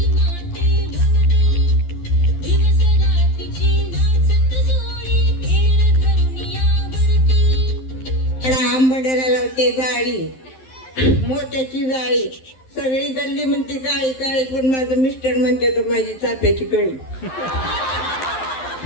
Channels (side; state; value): right; late; 12 ms